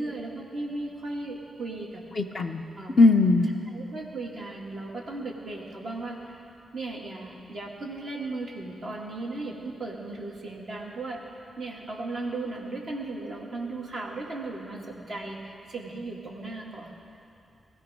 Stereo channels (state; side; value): normal; both; correlation 0.71